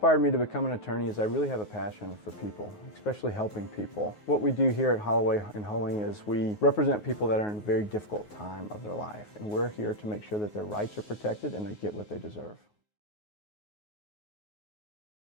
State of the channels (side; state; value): right; late; 9.5 ms